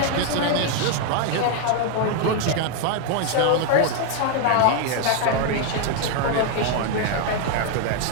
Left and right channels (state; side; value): different; both; correlation 0.00